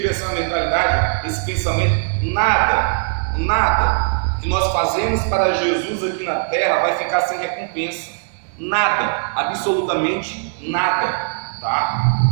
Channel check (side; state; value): left; silent; 66 dB below the other